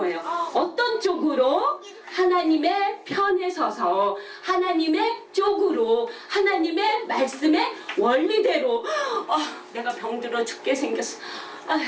어떤 쪽으로? 하나님의 편에 서서 하나님의 쪽으로 하나님의 말씀의 원리대로. 내가 병들어 죽게 생겼어.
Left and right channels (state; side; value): identical; both; correlation 1.00